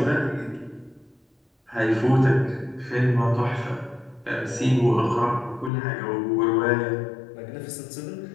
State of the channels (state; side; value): drops out; right; at 5.7 s